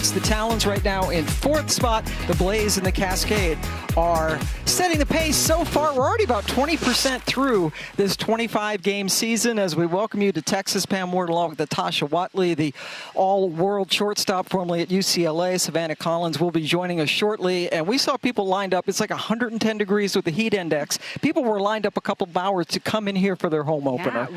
The Talons right now in 4th spot. The Blaze and the Cascade are setting the pace so far. We're already about 20% through this 25-game season as we welcome you to Texas. Pam Ward along with Natasha Watley, the all-world shortstop formerly at UCLA. Savannah Collins will be joining us shortly. And we saw people lined up. It's like 110 degrees with the heat index. People were lined up a couple of hours to come in here for their home opener. Yeah,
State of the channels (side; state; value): both; identical; correlation 1.00